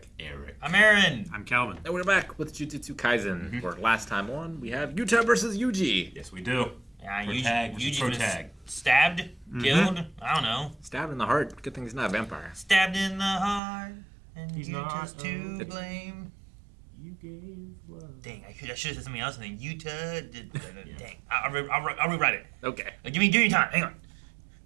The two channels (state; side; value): drops out; left; at 13.6 s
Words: Eric. I'm Aaron. I'm Calvin. And we're back with Jujutsu Kaisen. For last time on, we have Yuta versus Yuji. Yes, we do. Yeah, Yuji was tag. stabbed, killed. I don't know. Stabbed in the heart. Good thing he's not a vampire. Stabbed in the heart, and He's you not, just to blame. You gave love. Dang, I should have said something else, and then Utah did. Dang, I'll rewrite it. Okay. Give me time. Hang on.